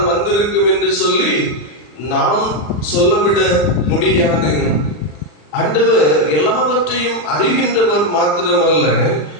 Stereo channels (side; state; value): right; late; 40 ms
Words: வந்திருக்கும் என்று சொல்லி நாம் சொல்லவிட முடியாது. ஆண்டவர் எல்லாவற்றையும் அறிகின்றவர் மாத்திரமல்ல,